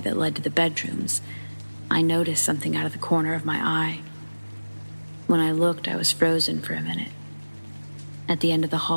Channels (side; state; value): both; inverted; correlation -1.00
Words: led to the bedrooms, I noticed something out of the corner of my eye. When I looked, I was frozen for a minute. At the end of the